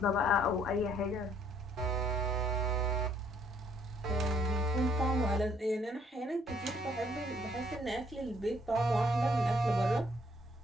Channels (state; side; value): normal; both; correlation 0.65